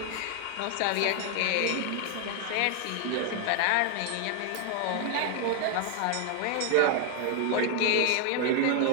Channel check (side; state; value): both; different; correlation 0.00